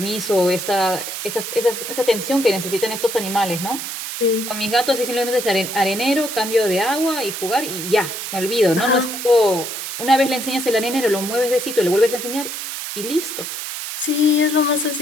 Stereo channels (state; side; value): noise; right; hiss, 6 dB below the sound